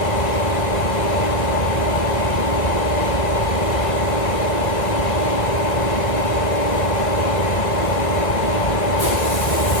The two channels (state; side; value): late; right; 1.3 ms